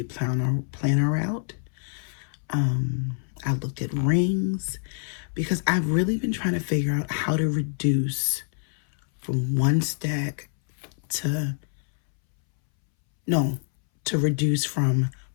planner route. I looked at rings because I've really been trying to figure out how to reduce from one stack to no, to reduce from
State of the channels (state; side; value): silent; right; 61 dB below the other